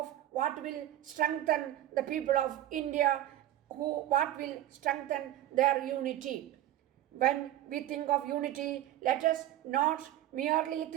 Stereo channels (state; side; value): quieter; left; 13.4 dB